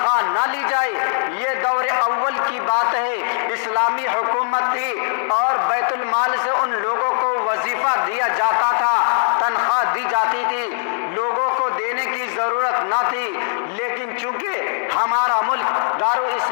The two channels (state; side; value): silent; right; 66 dB below the other